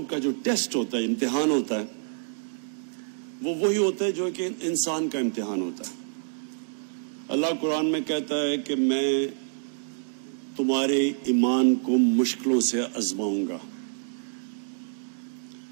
کا جو ٹیسٹ ہوتا ہے, امتحان ہوتا ہے, وہ وہی ہوتا ہے جو کہ انسان کا امتحان ہوتا ہے. اللہ قرآن میں کہتا ہے کہ میں تمہارے ایمان کو مشکلوں سے آزماؤں گا,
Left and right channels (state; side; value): silent; left; digital silence